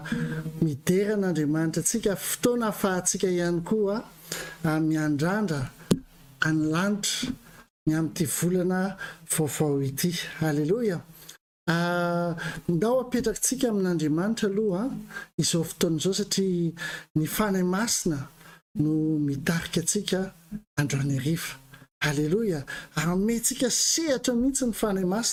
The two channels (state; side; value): identical; both; correlation 1.00